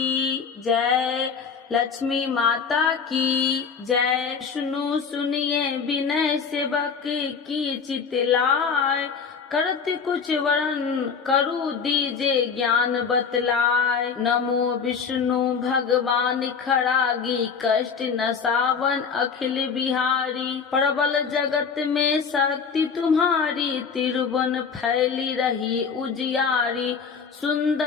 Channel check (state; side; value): quieter; right; 6.0 dB